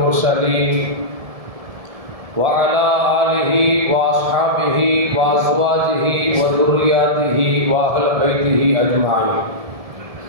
وعلى آله وأصحابه وأزواجه وذرياته وأهل بيته أجمعين.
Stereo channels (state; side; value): late; left; 1.7 ms